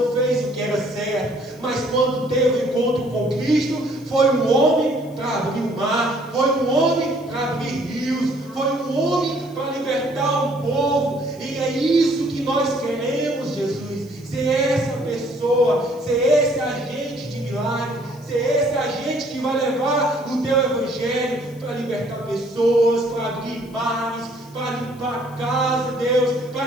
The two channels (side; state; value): left; noise; hiss, 27 dB below the sound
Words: fez o que era certo, mas quando teve um encontro com Cristo, foi um homem para abrir o mar, foi um homem para abrir rios, foi um homem para libertar o povo, e é isso que nós queremos, Jesus, ser essa pessoa, ser esse agente de milagre, ser esse agente que vai levar o teu evangelho para libertar pessoas, para abrir mares, para limpar a casa, Deus, para